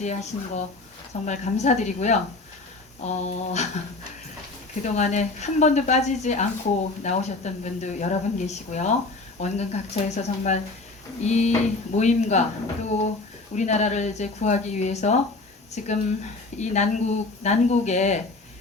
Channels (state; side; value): quieter; right; 3.4 dB